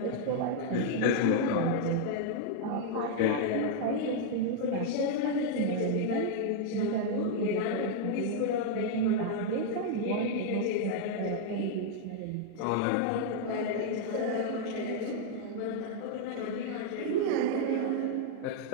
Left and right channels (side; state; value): both; different; correlation -0.01